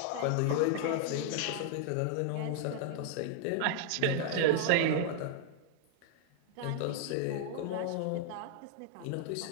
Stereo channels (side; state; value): both; different; correlation 0.00